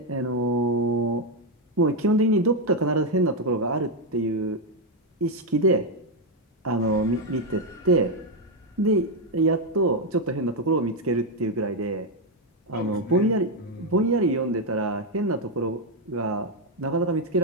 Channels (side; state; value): both; normal; correlation 0.04